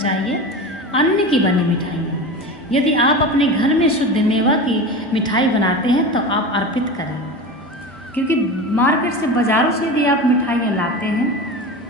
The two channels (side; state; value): both; normal; correlation 0.28